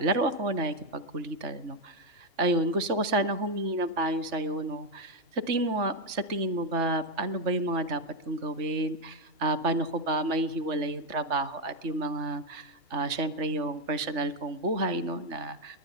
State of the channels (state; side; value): late; left; 3.4 ms